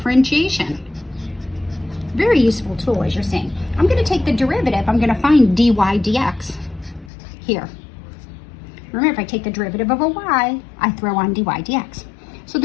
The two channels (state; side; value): drops out; right; at 7.1 s